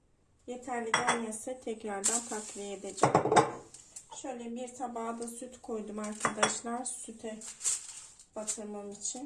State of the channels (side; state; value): both; identical; correlation 1.00